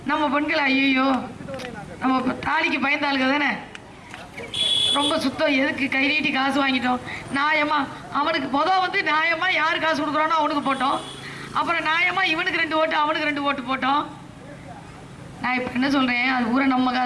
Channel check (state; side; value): identical; both; correlation 1.00